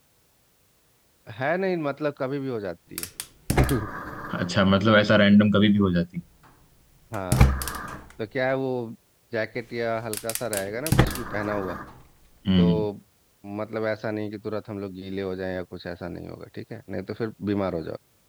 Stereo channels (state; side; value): identical; both; correlation 1.00